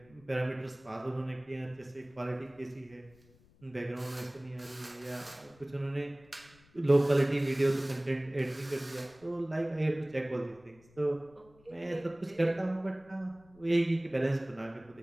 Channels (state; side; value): noise; left; rumble, 28 dB below the sound